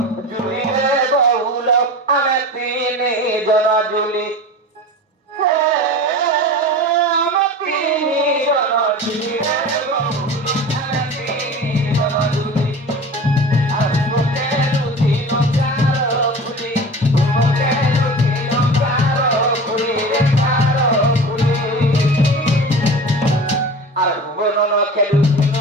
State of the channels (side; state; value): both; normal; correlation 0.34